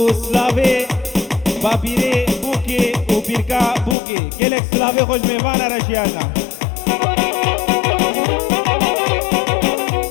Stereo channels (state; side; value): drops out; right; at 4.0 s